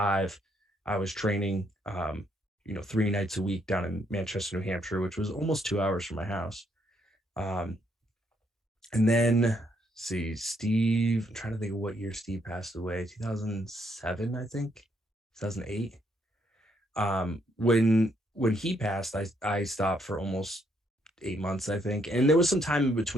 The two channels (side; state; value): both; normal; correlation 0.73